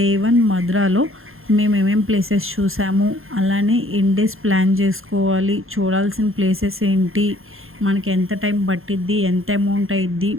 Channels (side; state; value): left; late; 0.60 ms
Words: 1 మధురాలో మేము ఏమేం ప్లేసెస్ చూసాము, అలానే ఎన్ని డేస్ ప్లాన్ చేసుకోవాలి, చూడాల్సిన ప్లేసెస్ ఏంటి, మనకి ఎంత టైం పట్టిద్ది, ఎంత అమౌంట్ అయ్యిద్ది,